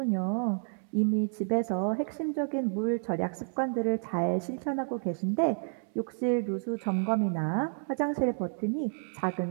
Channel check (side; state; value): left; silent; digital silence